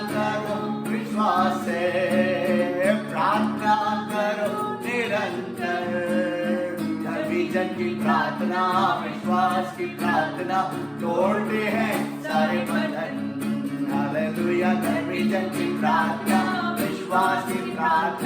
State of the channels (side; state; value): both; identical; correlation 1.00